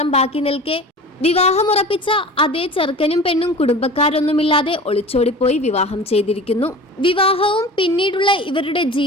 ബാക്കി നിൽക്കെ വിവാഹമുറപ്പിച്ച അതേ ചെറുക്കനും പെണ്ണും കുടുംബക്കാരൊന്നുമില്ലാതെ ഒളിച്ചോടിപ്പോയി വിവാഹം ചെയ്തിരിക്കുന്നു. വിവാഹവും പിന്നീടുള്ള ഇവരുടെ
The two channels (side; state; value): both; normal; correlation 0.38